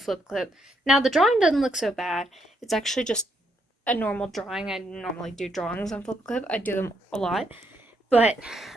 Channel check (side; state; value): both; normal; correlation 0.76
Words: Now, the drawing doesn't look so bad. It's actually just a normal drawing. I normally do drawings on Flipaclip. I do them a lot. But,